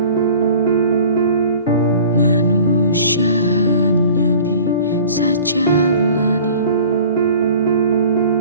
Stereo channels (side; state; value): both; inverted; correlation -0.45